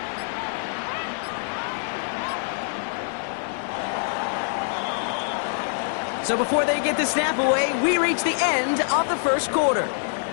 So before they get the snap away, we reach the end of the first quarter.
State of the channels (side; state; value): right; silent; digital silence